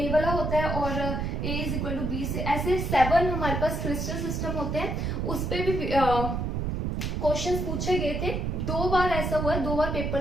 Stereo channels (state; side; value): noise; right; rumble, 1 dB below the sound